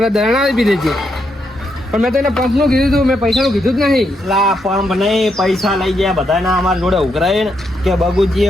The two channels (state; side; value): normal; both; correlation 0.79